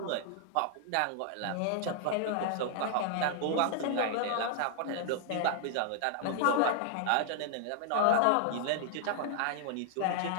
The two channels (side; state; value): both; different; correlation 0.00